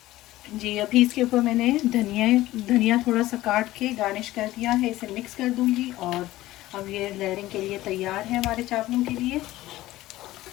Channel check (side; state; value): right; quieter; 16.4 dB